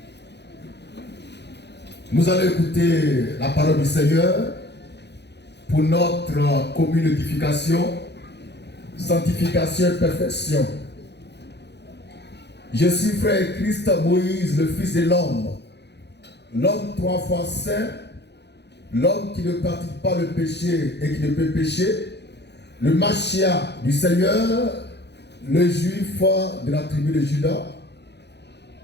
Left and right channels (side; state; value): right; late; 0.50 ms